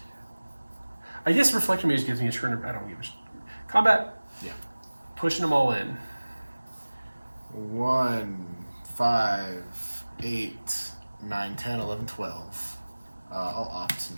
I guess Reflector Mage gives me a turn of... I don't give a combat. Yeah. Pushing them all in. 1, 5, 8, 9, 10, 11, 12. I'll opt in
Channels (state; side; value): inverted; both; correlation -1.00